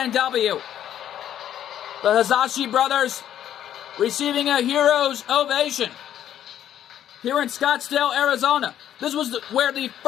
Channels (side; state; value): right; quieter; 10.8 dB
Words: the Hisashi brothers receiving a hero's ovation here in Scottsdale, Arizona. This was where the